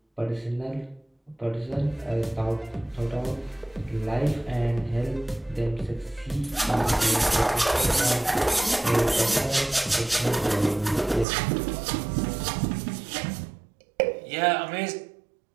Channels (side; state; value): left; drops out; at 11.2 s